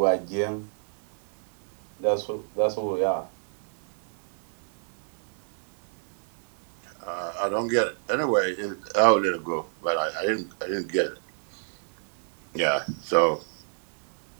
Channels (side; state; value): left; silent; 59 dB below the other